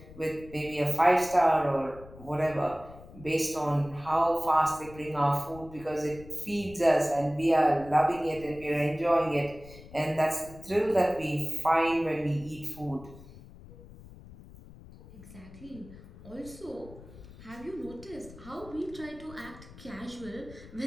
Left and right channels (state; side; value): noise; left; rumble, 18 dB below the sound